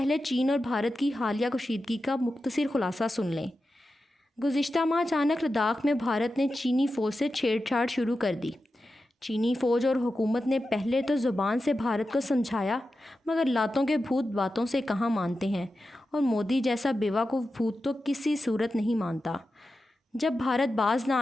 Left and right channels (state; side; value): normal; both; correlation 0.91